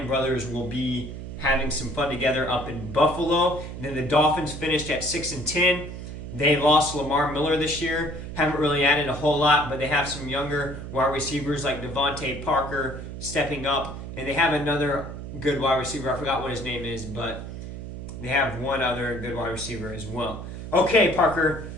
brothers will be having some fun together up in Buffalo. And then the Dolphins finished at 6-10. They lost Lamar Miller this year. Haven't really added a whole lot, but they have some younger wide receivers like Devontae Parker stepping up, and they have another good wide receiver. I forgot what his name is, but they have one other good wide receiver as well. Okay, Parker,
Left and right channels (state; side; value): noise; right; hum, 9 dB below the sound